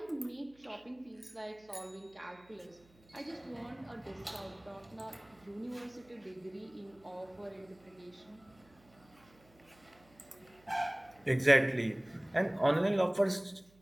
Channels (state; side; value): noise; right; hum, 28 dB below the sound